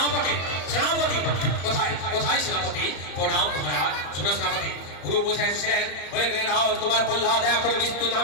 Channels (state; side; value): late; right; 33 ms